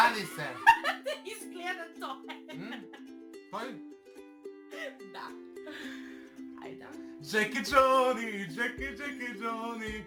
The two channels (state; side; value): identical; both; correlation 1.00